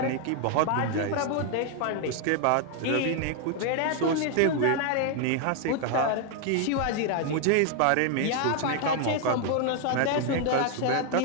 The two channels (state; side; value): different; both; correlation 0.00